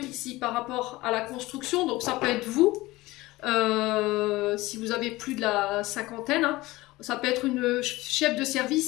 ici par rapport à la construction, donc ça peut être vous. Si vous avez plus de la cinquantaine, hein. Ça peut être une chef de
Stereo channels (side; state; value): right; quieter; 19.5 dB